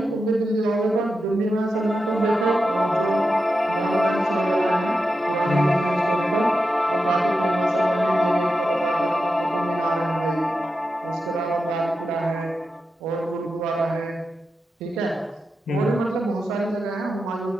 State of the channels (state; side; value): normal; both; correlation 0.89